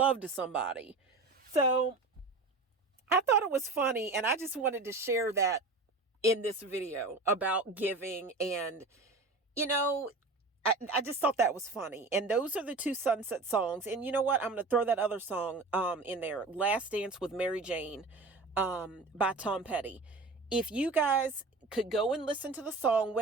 to somebody. So I thought it was funny, and I just wanted to share that in this video about giving, and I just thought that was funny. And those are the 2 Sunset songs. And you know what? I'm going to throw that other song in there. Last Dance with Mary Jane by Tom Petty. If you guys could go and listen to the song,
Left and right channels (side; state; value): left; quieter; 3.5 dB